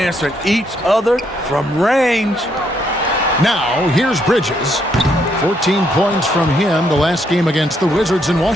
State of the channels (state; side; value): normal; both; correlation 0.74